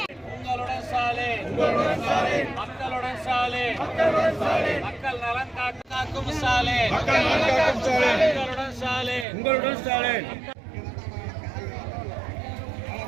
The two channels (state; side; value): drops out; left; at 9.2 s